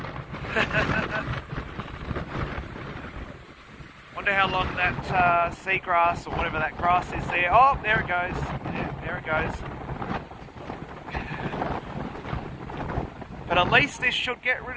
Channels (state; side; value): identical; both; correlation 1.00